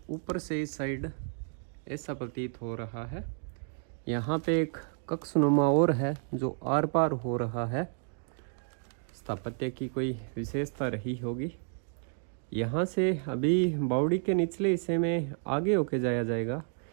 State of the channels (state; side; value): silent; left; 57 dB below the other